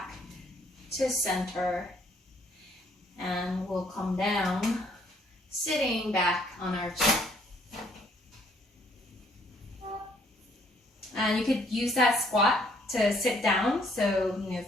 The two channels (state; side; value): normal; both; correlation 0.65